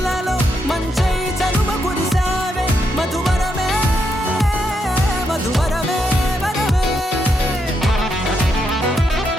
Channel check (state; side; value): normal; both; correlation 0.80